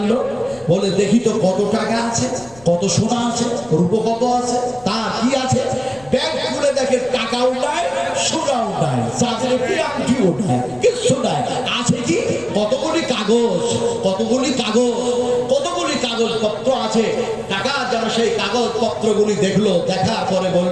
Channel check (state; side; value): noise; left; rumble, 24 dB below the sound